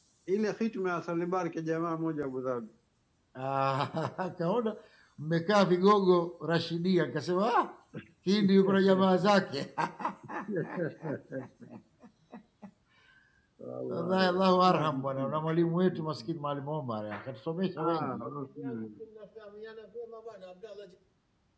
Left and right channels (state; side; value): identical; both; correlation 1.00